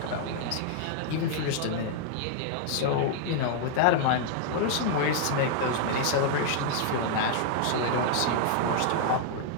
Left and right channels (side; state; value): both; different; correlation 0.00